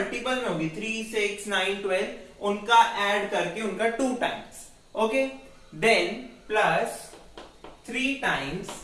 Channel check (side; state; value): both; identical; correlation 1.00